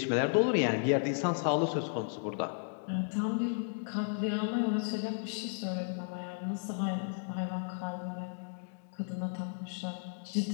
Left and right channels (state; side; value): silent; right; digital silence